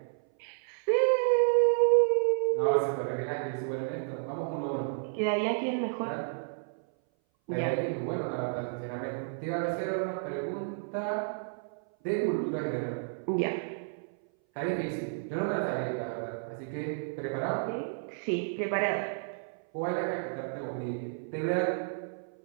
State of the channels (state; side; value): silent; left; 57 dB below the other